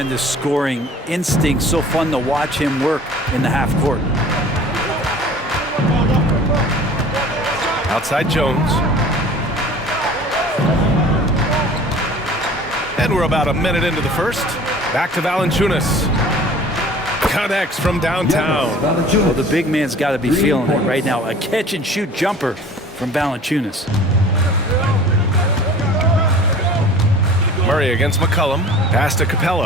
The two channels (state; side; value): normal; both; correlation 0.45